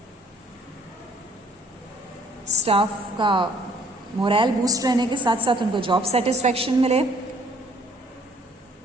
स्टाफ का मोरल बूस्ट रहने के साथ साथ उनको जॉब सेटिस्फैक्शन मिले,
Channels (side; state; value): both; normal; correlation 0.59